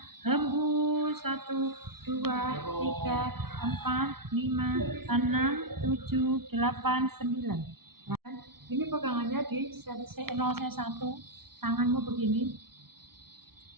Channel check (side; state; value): left; late; 0.95 ms